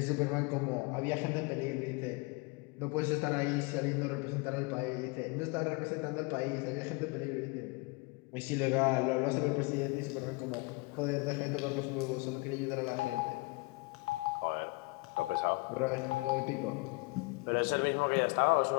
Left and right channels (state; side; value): quieter; right; 26.7 dB